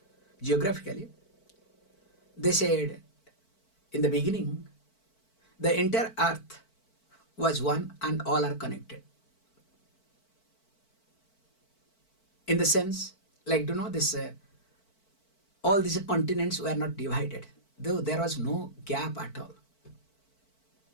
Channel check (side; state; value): right; late; 4.5 ms